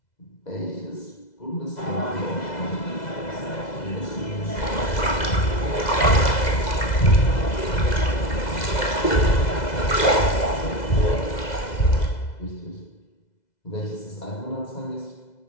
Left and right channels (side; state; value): right; late; 2.0 ms